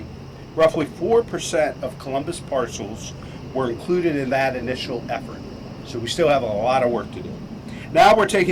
Roughly 4% of Columbus parcels were included in that initial effort, so we still have a lot of work to do. Now we're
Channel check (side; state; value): both; identical; correlation 1.00